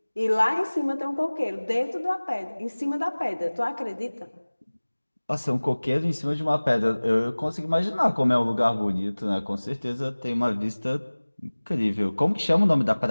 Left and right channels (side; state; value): both; inverted; correlation -1.00